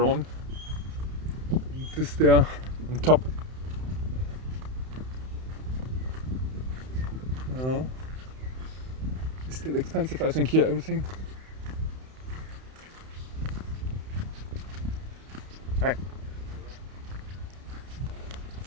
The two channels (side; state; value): left; late; 31 ms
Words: And this there on top. It's still expensive, I think, here, everything. Hi.